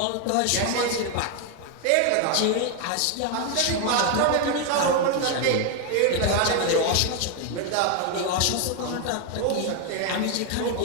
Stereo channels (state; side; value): different; both; correlation 0.01